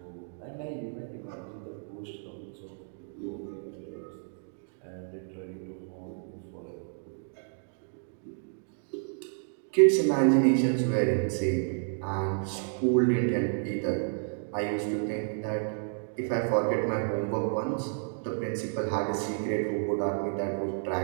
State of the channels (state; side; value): silent; left; digital silence